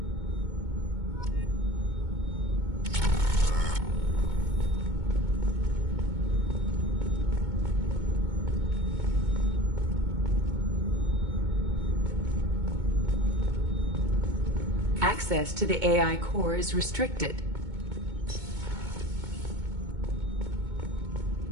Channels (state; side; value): late; left; 2.2 ms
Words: Access to the AI core is restricted.